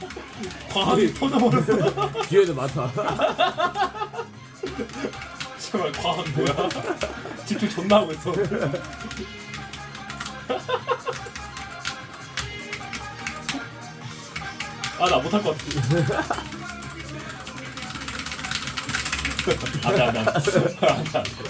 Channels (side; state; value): both; identical; correlation 1.00